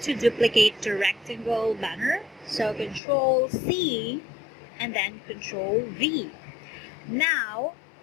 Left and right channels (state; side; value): drops out; right; at 3.0 s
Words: to duplicate the rectangle banner. So Control C and then Control V. Now